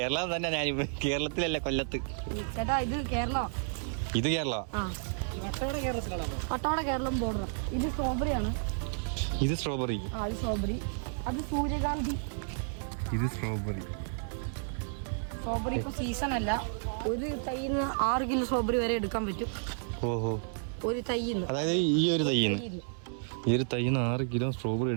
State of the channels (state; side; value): silent; left; 57 dB below the other